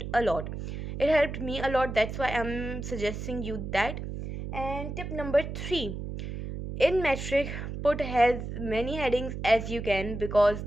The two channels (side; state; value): right; noise; hum, 6 dB below the sound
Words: a lot. It helped me a lot, that's why I'm suggesting you that. And tip number 3, in metric, put as many headings as you can, because